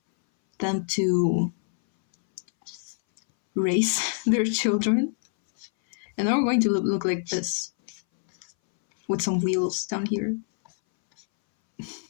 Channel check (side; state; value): right; silent; 61 dB below the other